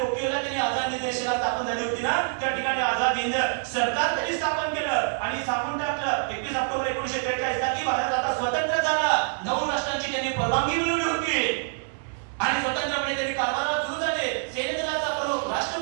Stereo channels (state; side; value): silent; left; 61 dB below the other